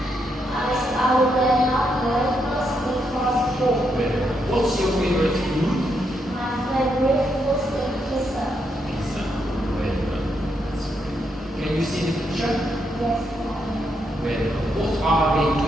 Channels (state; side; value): normal; both; correlation 0.79